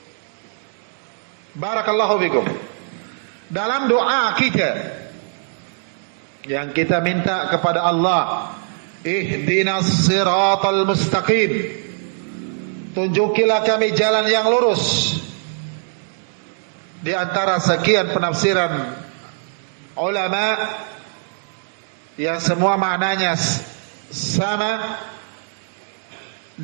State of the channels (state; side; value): silent; left; digital silence